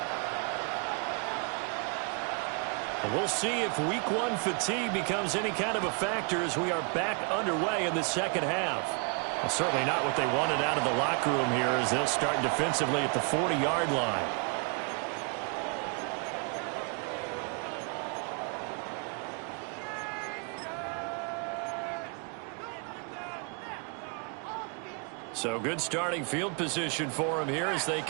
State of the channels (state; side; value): quieter; left; 37.0 dB